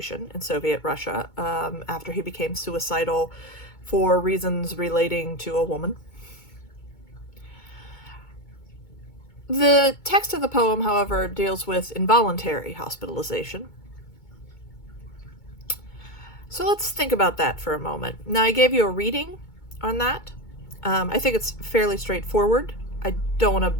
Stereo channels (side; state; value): right; late; 2.2 ms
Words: in Soviet Russia, after he became suicidal for reasons relating to a woman. The text of the poem, however, deals with involuntary hospitalization. So let's think about that for a moment. Now, I gave you a reading on that. I think it's fairly straightforward. I don't want to